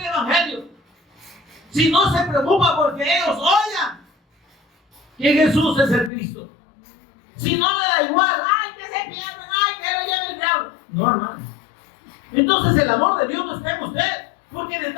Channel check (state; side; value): drops out; right; at 6.1 s